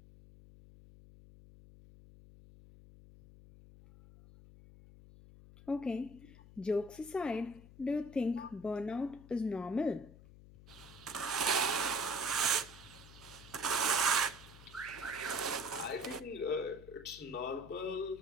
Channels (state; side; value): noise; left; hum, 19 dB below the sound